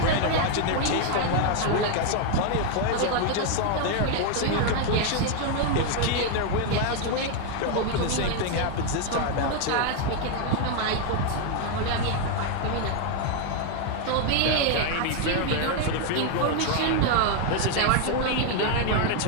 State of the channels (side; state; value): both; different; correlation 0.01